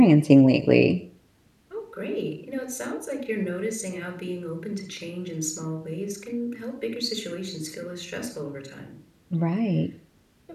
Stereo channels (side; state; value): both; identical; correlation 1.00